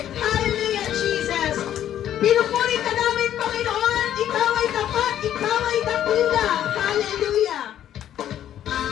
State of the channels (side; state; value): right; quieter; 11.0 dB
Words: Hallelujah, Jesus! Pinupuri ka namin, Panginoon! Ikaw ay tapat, ikaw ay dakila! Yun lang. Hallelujah.